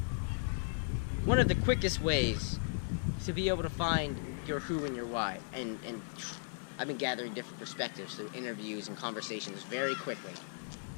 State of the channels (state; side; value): silent; right; 54 dB below the other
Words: one of the quickest ways to be able to find your who and your why. And I've been gathering different perspectives through interviews and conversations very quickly.